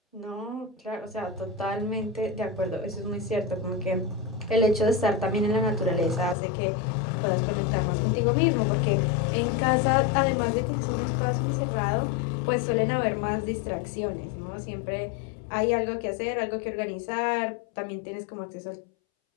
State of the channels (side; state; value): right; drops out; at 6.4 s